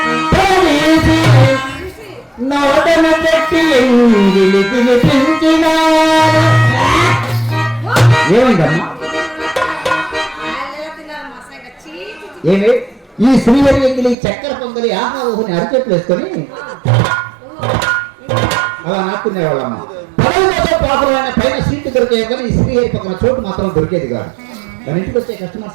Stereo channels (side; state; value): left; drops out; at 14.2 s